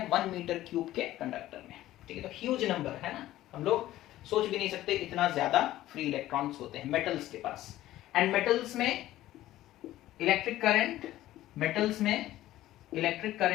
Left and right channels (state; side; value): quieter; right; 14.8 dB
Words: 1 मीटर क्यूब के कंडक्टर में, ठीक है, तो ह्यूज नंबर है ना, हम लोग सोच भी नहीं सकते इतना ज्यादा फ्री इलेक्ट्रॉन्स होते हैं मेटल्स के पास। एंड मेटल्स में इलेक्ट्रिक